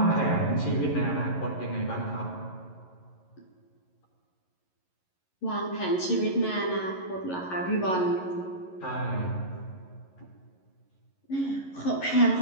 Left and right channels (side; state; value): right; late; 11 ms